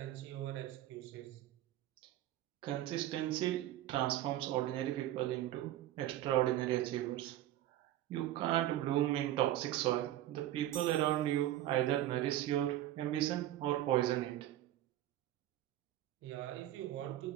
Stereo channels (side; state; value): left; quieter; 13.7 dB